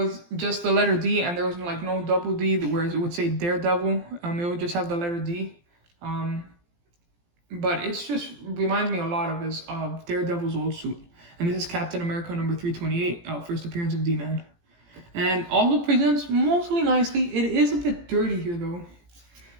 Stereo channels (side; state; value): left; late; 17 ms